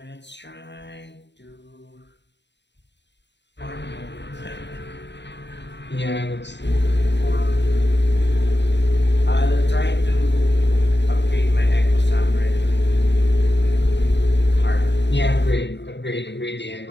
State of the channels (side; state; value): right; late; 0.51 ms